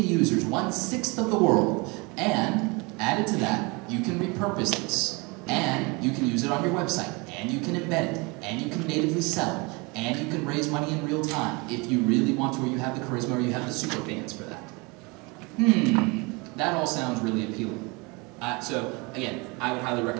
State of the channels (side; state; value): left; quieter; 27.6 dB